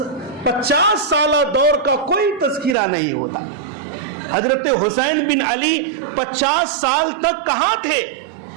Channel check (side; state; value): left; drops out; at 2.8 s